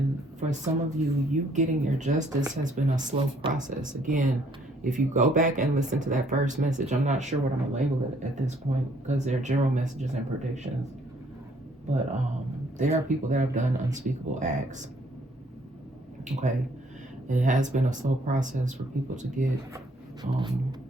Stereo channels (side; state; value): both; normal; correlation 0.64